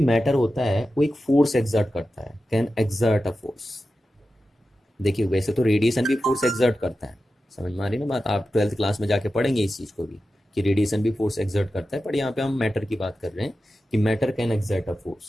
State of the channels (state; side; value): normal; both; correlation 0.92